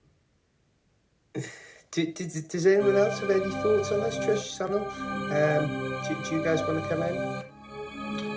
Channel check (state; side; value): identical; both; correlation 1.00